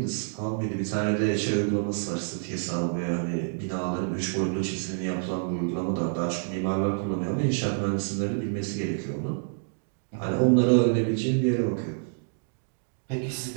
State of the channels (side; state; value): left; silent; digital silence